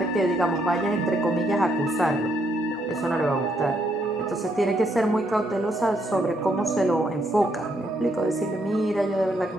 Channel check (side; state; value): both; normal; correlation 0.74